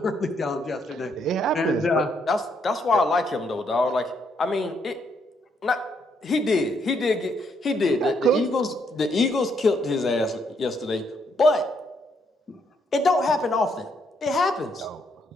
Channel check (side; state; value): both; normal; correlation 0.74